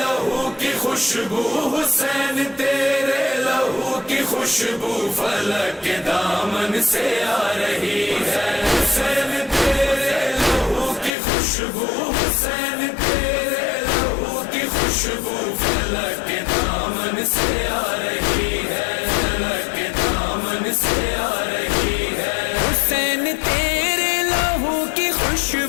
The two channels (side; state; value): right; drops out; at 11.1 s